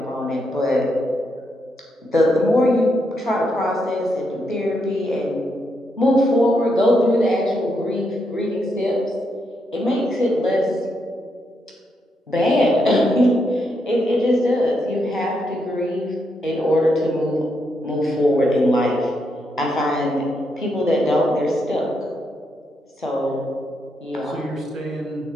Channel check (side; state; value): both; normal; correlation 0.80